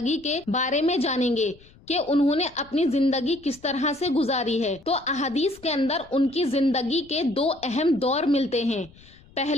کے بارے میں جانیں گے کہ انہوں نے اپنی زندگی کس طرح سے گزاری ہے۔ تو احادیث کے اندر ان کی زندگی کے دو اہم دور ملتے ہیں،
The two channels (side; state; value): left; noise; rumble, 26 dB below the sound